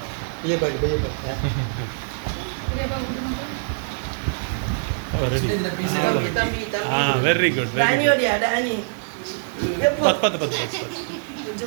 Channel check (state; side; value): silent; left; digital silence